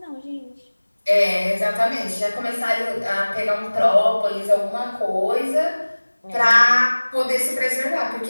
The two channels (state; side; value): inverted; both; correlation -1.00